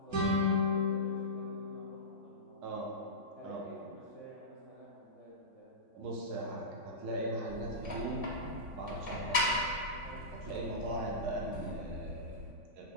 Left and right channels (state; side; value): late; left; 3.5 ms